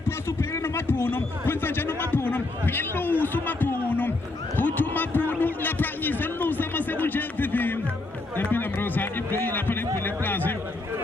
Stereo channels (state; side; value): quieter; right; 3.0 dB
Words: Posu Perino Mapunum. Quintajano Mapunum. Hello, Sumapunum. Utumapunum, La Pranis, and Lusama Sebujan Vivim. The Pinamrosa, if they are putting for the plaza,